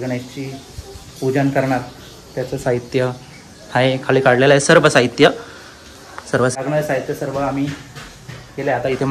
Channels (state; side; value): identical; both; correlation 1.00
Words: पूजन करणार. त्याचं साहित्य आहे खाली काढलेलं आहे. सर्व साहित्य लागणारे साहित्य सर्व आम्ही केले. आता इथे